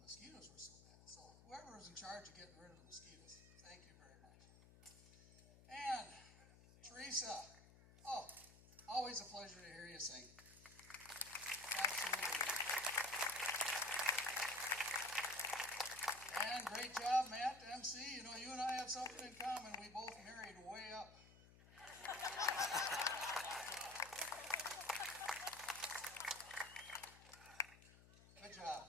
were so bad. So whoever was in charge of getting rid of the mosquitoes, thank you very much. And Teresa, oh, always a pleasure to hear you sing. Absolutely. And great job, Matt, MC. You know, you and I have something in common. We both married way up. Good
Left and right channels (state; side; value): noise; left; hum, 21 dB below the sound